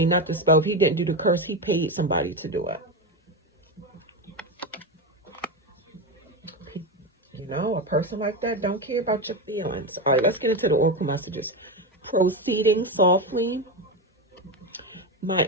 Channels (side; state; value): both; normal; correlation 0.15